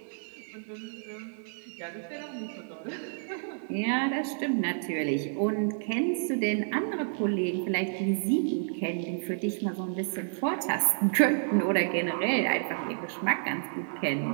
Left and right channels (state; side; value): silent; left; 58 dB below the other